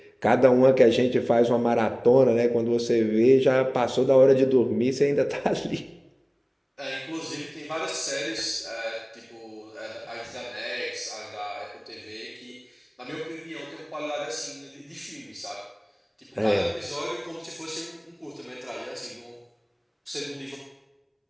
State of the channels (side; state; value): both; identical; correlation 1.00